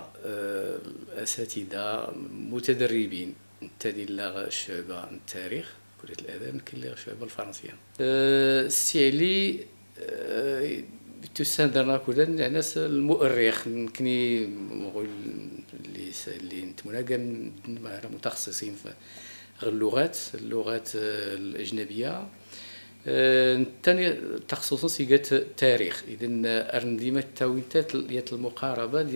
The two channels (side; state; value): both; inverted; correlation -1.00